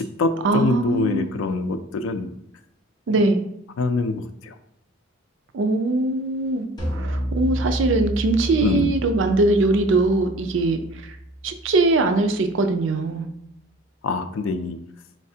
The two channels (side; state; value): both; normal; correlation 0.46